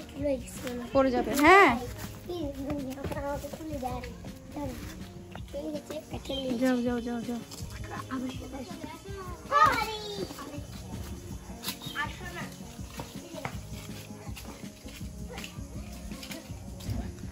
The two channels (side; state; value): both; identical; correlation 1.00